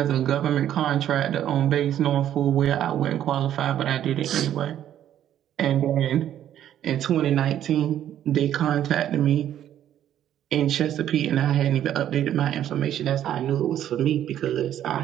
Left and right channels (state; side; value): quieter; left; 11.1 dB